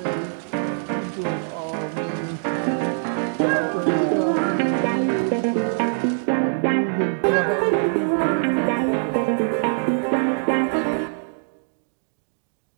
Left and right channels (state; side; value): silent; left; 63 dB below the other